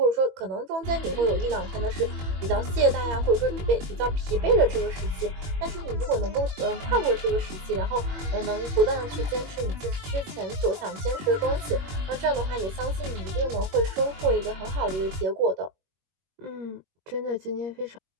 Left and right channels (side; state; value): left; late; 21 ms